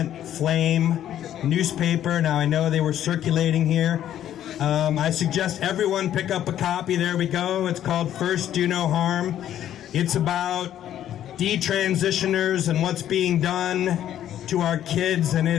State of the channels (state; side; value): quieter; right; 11.2 dB